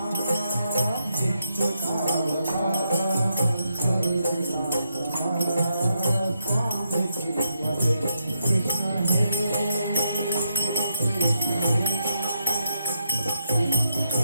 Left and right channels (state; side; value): inverted; both; correlation -0.81